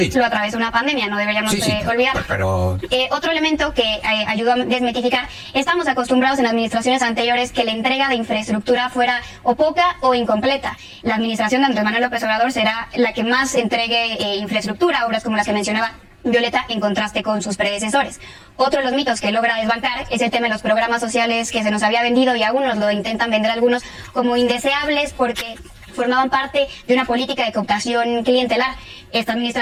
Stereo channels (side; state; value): both; identical; correlation 1.00